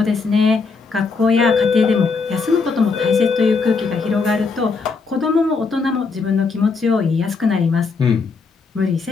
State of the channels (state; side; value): quieter; right; 4.6 dB